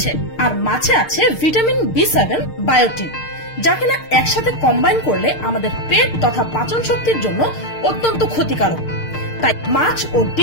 আর মাছে আছে ভিটামিন বি7 বায়োটিন, যা কিনা একসাথে কম্বাইন করলে আমাদের পেট তথা পাচন শক্তির জন্য অত্যন্ত ক্ষতিকারক। তাই মাছ ও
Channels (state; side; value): late; right; 6.6 ms